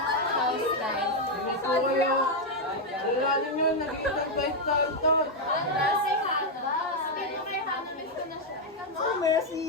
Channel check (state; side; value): normal; both; correlation 0.01